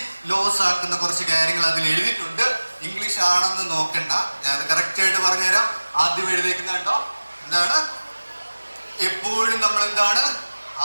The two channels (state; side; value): inverted; both; correlation -1.00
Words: ലോസ് ആക്കുന്ന കുറച്ച് കാര്യങ്ങൾ അതിൽ എഴുതിയിട്ടുണ്ട്. ഇംഗ്ലീഷ് ആണെന്ന് നോക്കണ്ട, ഞാൻ അത് കറക്റ്റ് ആയിട്ട് പറഞ്ഞുതരാം. ആദ്യം എഴുതിയിരിക്കുന്ന കണ്ടോ, എന്താണ്? എപ്പോഴും നമ്മൾ എന്താണ്